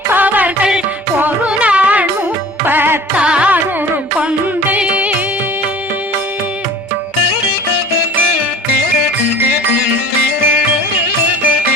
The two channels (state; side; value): normal; both; correlation 0.44